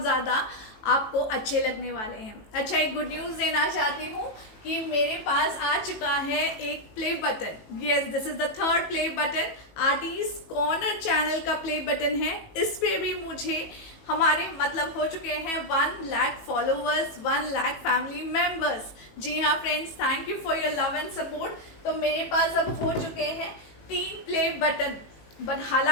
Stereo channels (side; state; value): right; late; 18 ms